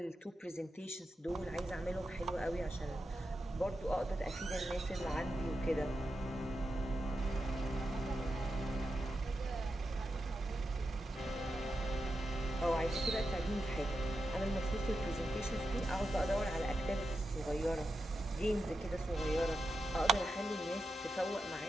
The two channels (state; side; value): normal; both; correlation 0.88